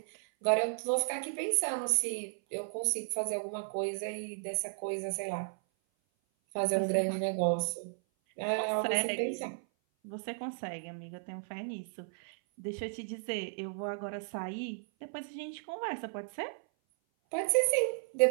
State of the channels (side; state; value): left; silent; 55 dB below the other